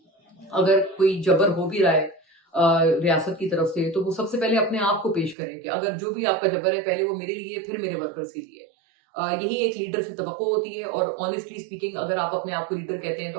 اگر کوئی جبر ہو بھی رہا ہے ریاست کی طرف سے تو وہ سب سے پہلے اپنے آپ کو پیش کرے کہ اگر جو بھی آپ کا جبر ہے پہلے وہ میرے لیے پھر میرے ورکرز کے لیے. یہی ایک لیڈر سے توقع ہوتی ہے. اور آنیسٹلی اسپیکنگ اگر آپ اپنے آپ کو لیڈر کہتے ہیں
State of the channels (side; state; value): left; drops out; at 5.4 s